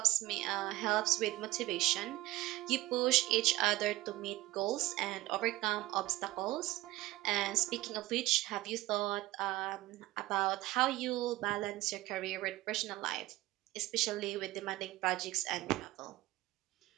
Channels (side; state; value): left; quieter; 17.8 dB